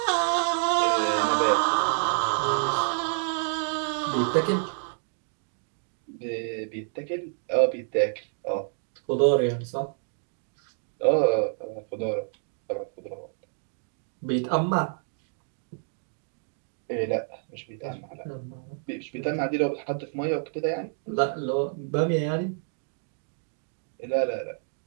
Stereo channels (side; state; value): left; silent; 59 dB below the other